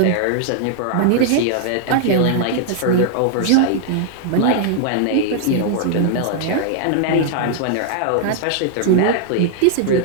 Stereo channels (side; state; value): both; different; correlation -0.01